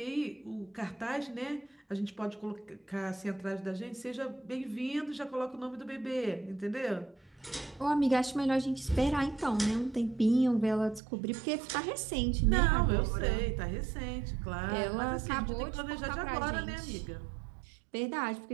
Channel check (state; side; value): drops out; left; at 11.0 s